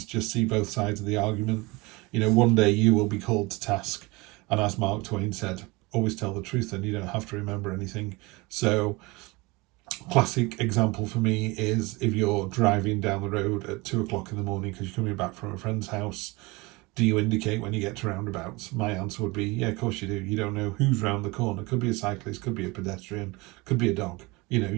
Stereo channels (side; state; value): left; quieter; 24.2 dB